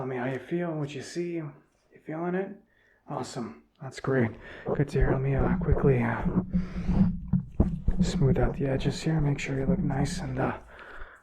you feel, what you see. You feeling it? Awesome. That's great. Good to hear. Let me quickly smooth out the edges here. Make sure you look nice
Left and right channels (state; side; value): identical; both; correlation 1.00